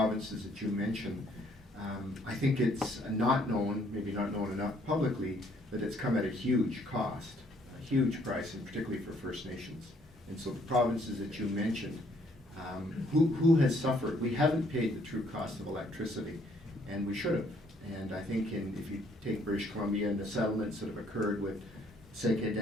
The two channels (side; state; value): both; normal; correlation 0.65